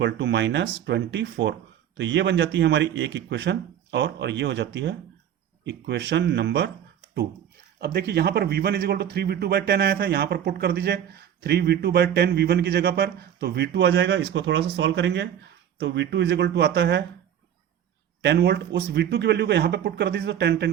to -24। तो ये बन जाती है हमारी एक इक्वेशन, और ये हो जाती है इक्वेशन नंबर 2। अब देखिए यहां पर V1 is equal to 3V2 bye 10 आया था, यहां पर पुट कर दीजिए 3V2 बाय 10 V1 की जगह पर, तो V2 आ जाएगा। इसको थोड़ा सा सॉल्व करेंगे तो V2 इज इक्वल टू आता है 10 वोल्ट। उस V2 की वैल्यू को यहां पे पुट कर दीजिए तो 10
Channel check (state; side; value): quieter; left; 9.9 dB